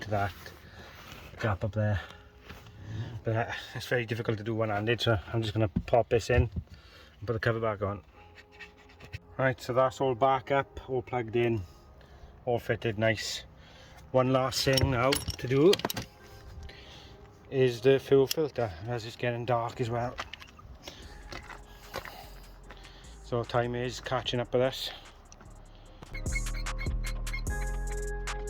that gap up there, but it's very difficult to do one-handed, so I'm just going to pop this in and put the cover back on. Right, so that's all back up, all plugged in, all fitted nice. One last thing now to do is the fuel filter, as it's getting dark as well. So time is catching up with us.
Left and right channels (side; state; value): both; identical; correlation 1.00